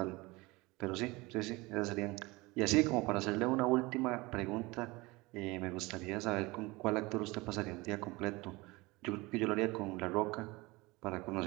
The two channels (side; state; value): left; quieter; 22.9 dB